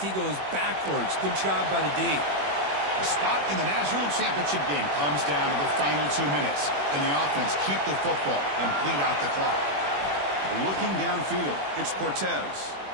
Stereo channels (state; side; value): late; left; 21 ms